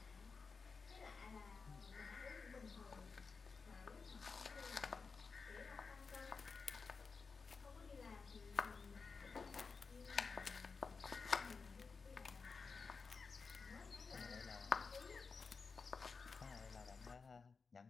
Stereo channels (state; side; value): quieter; right; 4.8 dB